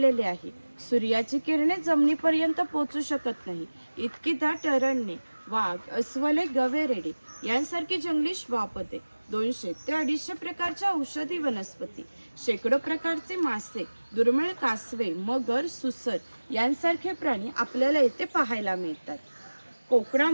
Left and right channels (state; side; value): inverted; both; correlation -1.00